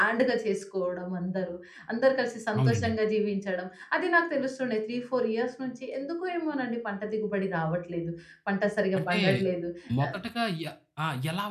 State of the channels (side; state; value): both; identical; correlation 1.00